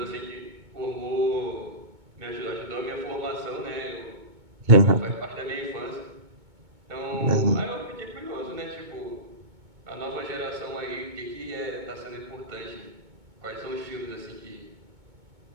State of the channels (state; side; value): late; left; 2.2 ms